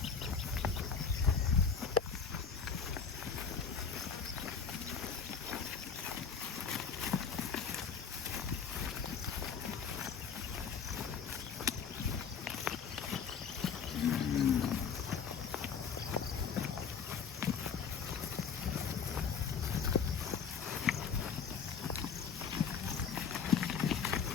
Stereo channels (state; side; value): quieter; right; 6.4 dB